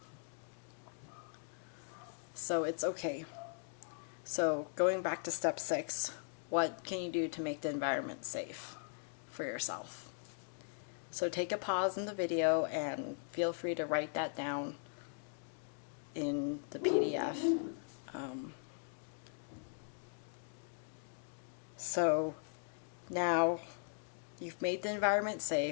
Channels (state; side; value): silent; right; digital silence